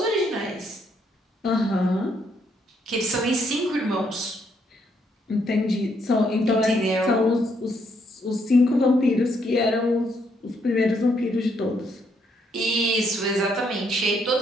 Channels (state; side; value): normal; both; correlation 0.73